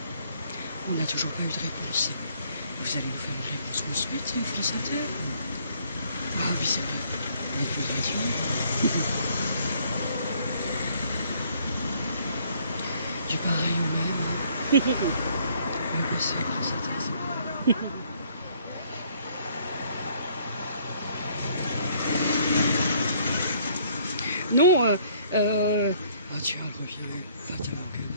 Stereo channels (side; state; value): both; inverted; correlation -0.63